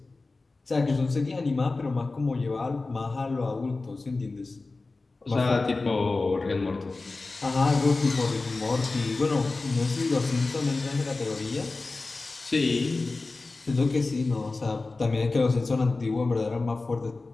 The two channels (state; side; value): quieter; right; 3.5 dB